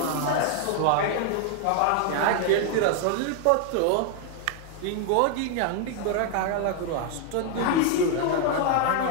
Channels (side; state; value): both; different; correlation 0.00